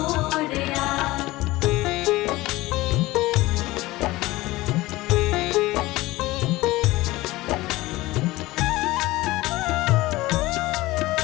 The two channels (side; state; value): right; quieter; 19.1 dB